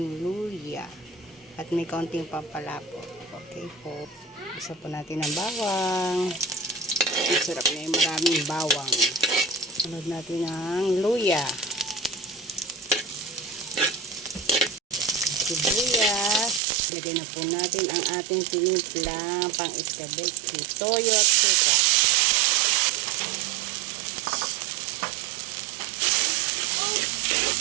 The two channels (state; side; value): drops out; left; at 16.6 s